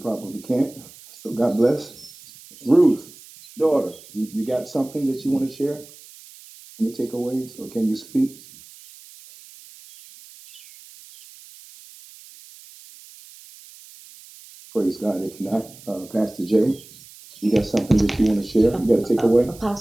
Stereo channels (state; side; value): noise; right; hiss, 21 dB below the sound